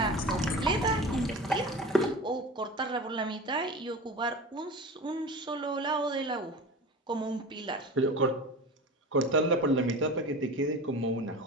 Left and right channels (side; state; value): both; normal; correlation 0.33